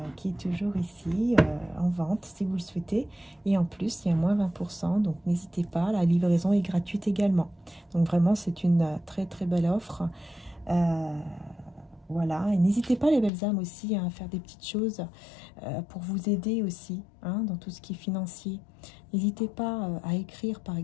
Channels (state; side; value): drops out; right; at 13.3 s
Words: qui est toujours ici en vente si vous le souhaitez. Et en plus, il y a moins 20%. Donc, n'hésitez pas. La livraison est gratuite également. Donc, vraiment, c'est une très, très belle offre. Voilà. Et n'hésitez pas, les belles âmes, aussi à faire des petites choses pour vous aider aussi hein, dans tout ce qui est financier. N'hésitez pas à écrire, par